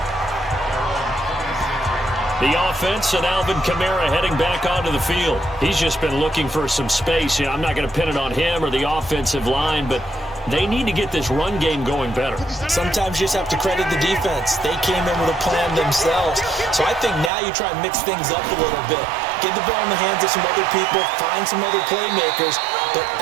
The offense and Alvin Kamara heading back onto the field. He's just been looking for some space. Yeah, I'm not going to pin it on him or the offensive line, but they need to get this run game going better. Sometimes you just have to credit the defense. They came in with a plan themselves. So I think now you try and mix things up a little bit. Get the ball in the hands of some other people, find some other playmakers, but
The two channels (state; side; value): drops out; left; at 17.3 s